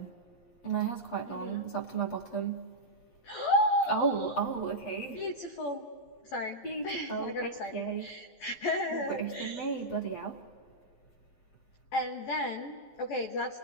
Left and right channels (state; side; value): late; right; 11 ms